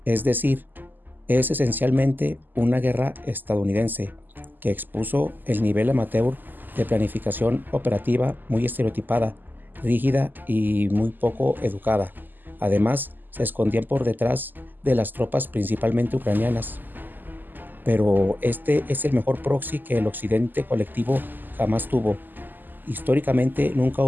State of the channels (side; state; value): left; late; 0.088 ms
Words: Es decir, es esencialmente una guerra estadounidense que expuso el nivel amateur de planificación operativa muy estereotipada, rígida y muy poco educada. Además, se escondían por detrás de las tropas principalmente ucranianas. Pero este es el mejor proxy que el occidente colectivo jamás tuvo. Históricamente nunca